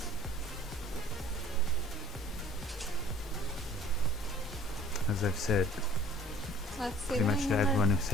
As I've said, Let's see pretty the much to winning number. everyone who's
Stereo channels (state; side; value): normal; both; correlation 0.50